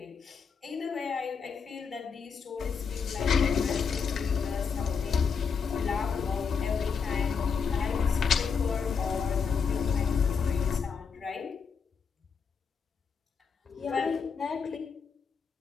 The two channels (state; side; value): quieter; right; 5.9 dB